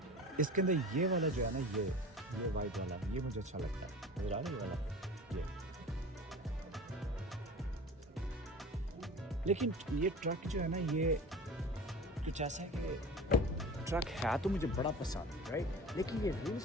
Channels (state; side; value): normal; both; correlation 0.37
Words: اس کے اندر یہ والا جو ہے نا یہ وائٹ والا یہ مجھے اچھا لگتا ہے. نظر آ رہا ہے یہ والا یہ. لیکن یہ ٹرک جو ہے نا یہ کچھ ایسا ہے کہ ٹرک ہے تو مجھے بڑا پسند رائٹ، لیکن یہ ریل